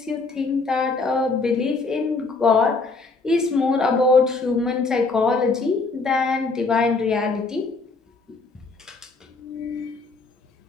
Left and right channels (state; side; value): quieter; right; 3.9 dB